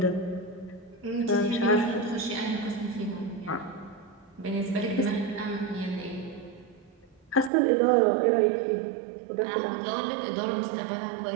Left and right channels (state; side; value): drops out; left; at 7.5 s